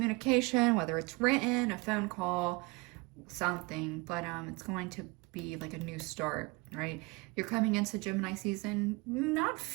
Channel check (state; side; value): quieter; left; 26.0 dB